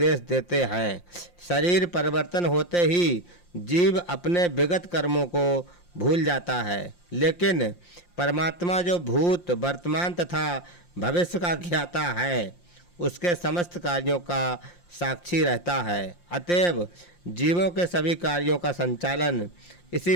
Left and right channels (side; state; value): right; late; 5.7 ms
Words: देते हैं। शरीर परिवर्तन होते ही जीव अपने विगत कर्मों को भूल जाता है, लेकिन परमात्मा जो भूत वर्तमान तथा भविष्य का ज्ञाता है उसके समस्त कार्यों का साक्षी रहता है। अतएव जीवों के सभी कार्यों का संचालन